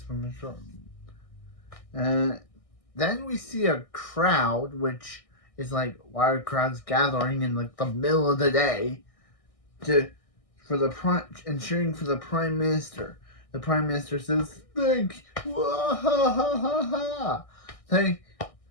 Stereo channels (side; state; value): right; late; 1.6 ms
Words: from the short. Then we see a crowd, which is like, why are crowds gathering in like the middle of the day and cheering for the Prime Minister? The Prime Minister says, "Thank, thank,